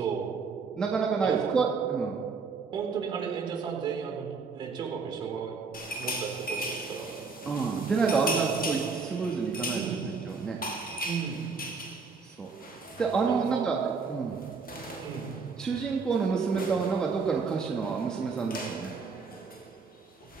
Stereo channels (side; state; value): left; quieter; 4.8 dB